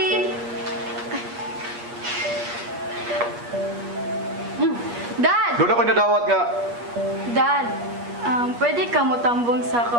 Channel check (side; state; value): left; late; 8.4 ms